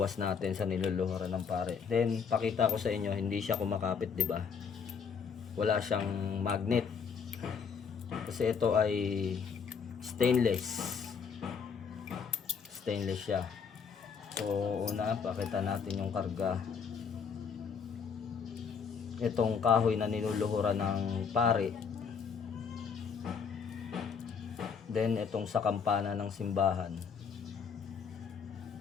natin sa niluluhuran ng pare. Then pakita ko sa inyo, hindi siya kumakapit, di ba? Wala siyang magnet. Kasi ito ay stainless. Stainless siya. So una, pakita natin yung karga. Itong kahoy na niluluhuran ng pare. Then itong sa kampana ng simbahan.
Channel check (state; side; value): quieter; right; 6.2 dB